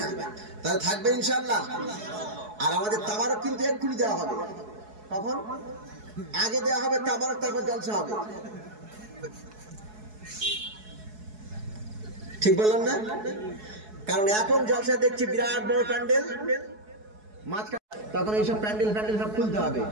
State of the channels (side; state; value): left; late; 4.7 ms